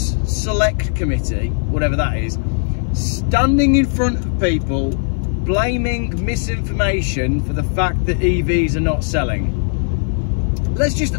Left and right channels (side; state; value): right; silent; 56 dB below the other